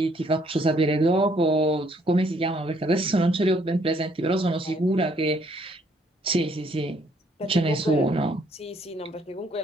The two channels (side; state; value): both; normal; correlation 0.66